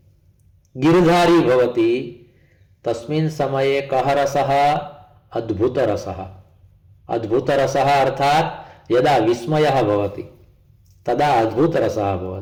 गिरिधारी भवति, तस्मिन् समये कः रसः? अद्भुत रसः। अद्भुत रसः अर्थात् यदा विस्मयः भवति तदा अद्भुत रसः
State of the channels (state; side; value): identical; both; correlation 1.00